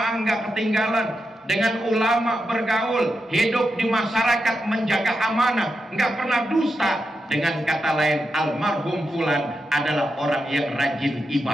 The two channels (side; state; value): both; normal; correlation 0.87